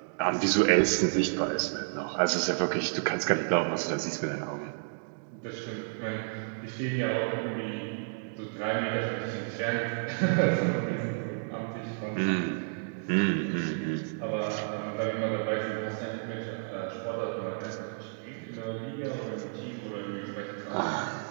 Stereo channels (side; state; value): left; silent; digital silence